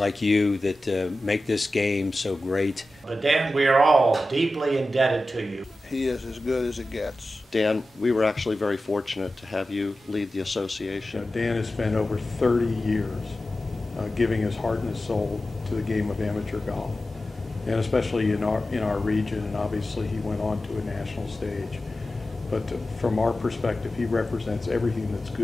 you that make this game so great. But Dan, we are all deeply indebted to you. He is as good as it gets. Dan, we were actually very fortunate to have you lead the association. Dan has spent over 30 years giving his heart and his soul to the game of amateur golf, and especially in our region, and obviously he went on to a national stage. But from our perspective, he represents everything that's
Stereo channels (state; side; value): normal; both; correlation 0.94